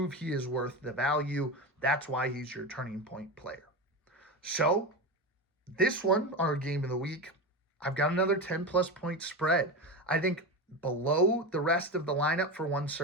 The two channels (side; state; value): both; normal; correlation 0.20